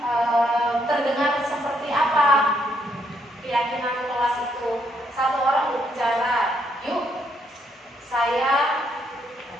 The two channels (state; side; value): normal; both; correlation 0.74